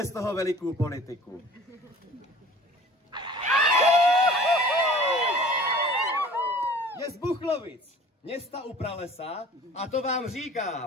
z toho velikou politiku. Je z Buchlovic, města u pralesa, a to vám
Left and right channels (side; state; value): both; normal; correlation 0.46